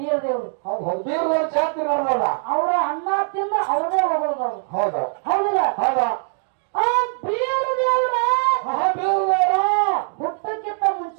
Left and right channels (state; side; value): silent; left; digital silence